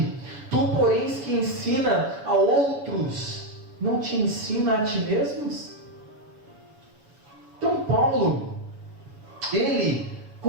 tu, porém, que ensina a outros, não te ensina a ti mesmos? Então Paulo, ele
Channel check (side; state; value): left; late; 7.0 ms